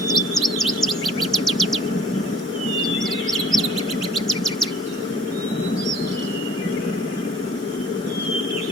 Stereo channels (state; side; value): normal; both; correlation 0.51